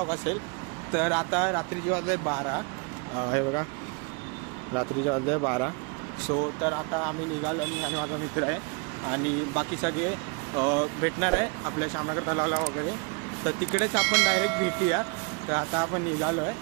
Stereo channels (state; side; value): quieter; left; 32.5 dB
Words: असेल. तर आता रात्रीचे वाजले 12. हे बघा, रात्रीचे वाजले 12. सो तर आता आम्ही निघालो, मी आणि माझा मित्र आहे आणि बाकी सगळे भेटणार आहे आपल्या श्यामनगर तलावाला वगैरे. तर तिकडेच आपण डायरेक्ट भेटूया. तर आता आपण निघालो आहे,